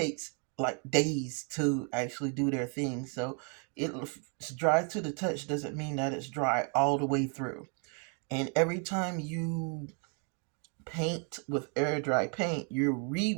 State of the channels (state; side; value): quieter; left; 39.2 dB